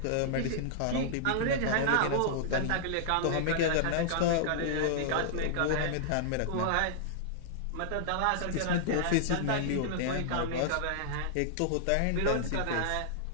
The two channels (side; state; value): both; different; correlation -0.01